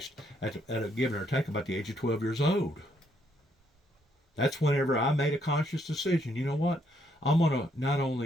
at a give or take about the age of 12 years old. That's whenever I made a conscious decision. You know what? I'm going to not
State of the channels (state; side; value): normal; both; correlation 0.72